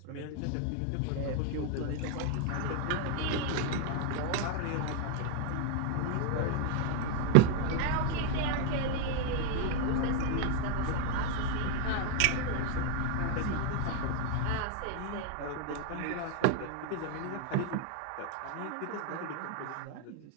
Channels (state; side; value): different; both; correlation 0.01